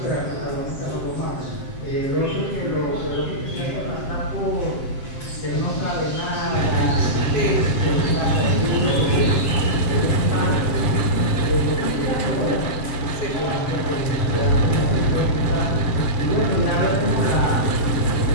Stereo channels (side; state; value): right; late; 7.6 ms